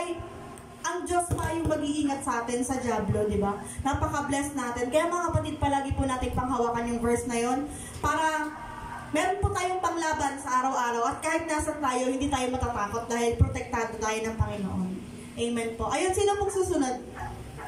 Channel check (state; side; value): identical; both; correlation 1.00